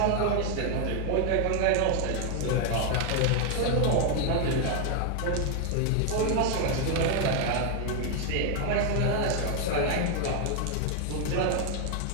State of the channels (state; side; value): different; both; correlation 0.00